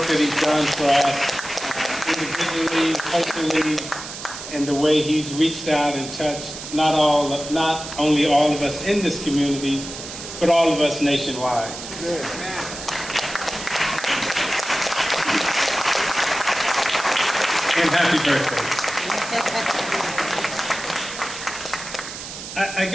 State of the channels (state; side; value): noise; right; hiss, 10 dB below the sound